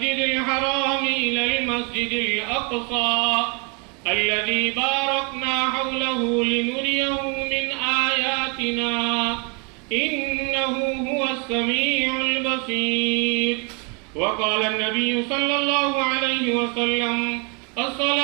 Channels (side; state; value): left; quieter; 33.8 dB